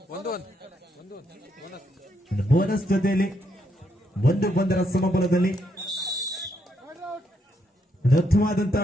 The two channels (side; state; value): both; normal; correlation 0.77